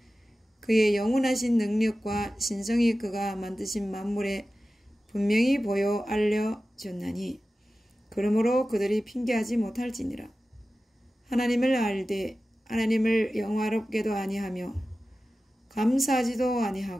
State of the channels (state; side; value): normal; both; correlation 0.95